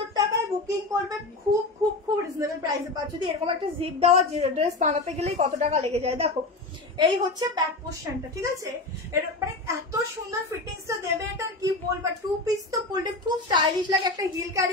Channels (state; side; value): quieter; right; 3.2 dB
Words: টাকায় বুকিং করবে, খুব খুব খুব রিজনেবল প্রাইসে পাচ্ছ। যদি এরকম একটা জিপ দেওয়া ড্রেস বানাতে গেলেই কত টাকা লেগে যায়। দেখো, এই হচ্ছে ব্যাক পোর্শনটা, ঠিক আছে? মানে এত সুন্দর ফিটিংসটা দেবে, এটা কি বলবো। 2 পিস তো পরলে খুব স্টাইলিশ লাগে। একটা হিল